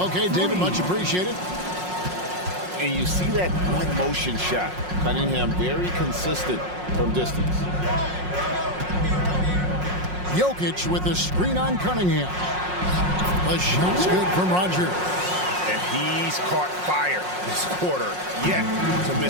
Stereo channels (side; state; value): left; late; 5.5 ms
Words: David, much appreciated. And you see that one motion shot. Cunningham very consistent from distance. Jokic with the screen on Cunningham. The shot's good from Rodgers. And he's caught fire this quarter, yet to